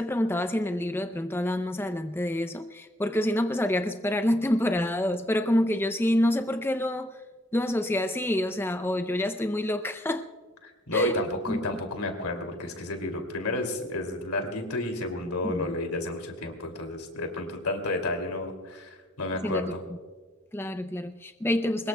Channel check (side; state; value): both; normal; correlation 0.63